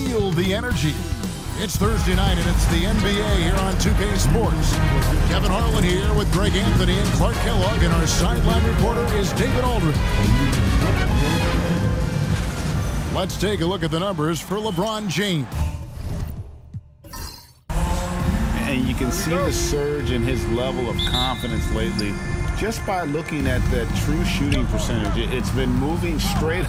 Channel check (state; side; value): identical; both; correlation 1.00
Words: the energy. It's Thursday night, and it's the NBA here on 2K Sports. Kevin Harlan here with Greg Anthony and Clark Kellogg, and our sideline reporter is David Aldridge. Let's take a look at the numbers for LeBron James. And you can see the surge in his level of confidence lately just by looking at that true shooting percentage. It's been moving straight